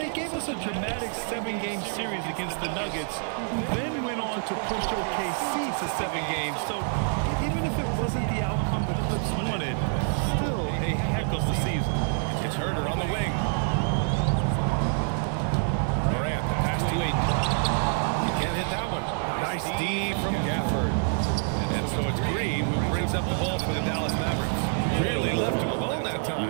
gave us a dramatic 7-game series against the Nuggets, who then went on to push OKC to 7 games. So even if it wasn't the outcome the Clips wanted, still a heck of a season. It's Herder on the wing. Morant, the pass to Aiden. You can't hit that one. Nice D from Gafford. And so it's Green who brings up the ball for the Dallas Mavericks. Really left him alone that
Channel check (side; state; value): left; silent; 60 dB below the other